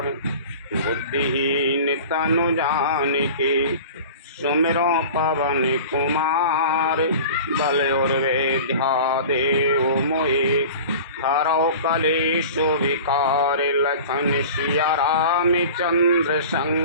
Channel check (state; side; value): inverted; both; correlation -0.38